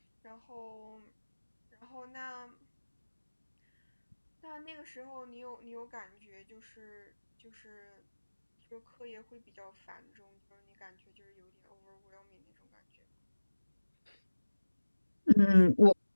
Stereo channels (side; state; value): both; inverted; correlation -1.00